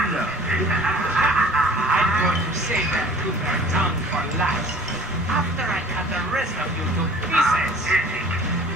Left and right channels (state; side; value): noise; left; rumble, 21 dB below the sound